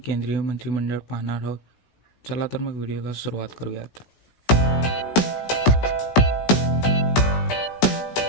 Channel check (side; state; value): right; late; 16 ms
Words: केंद्रीय मंत्रिमंडळ पाहणार आहोत. चला तर मग व्हिडिओला सुरुवात करूयात.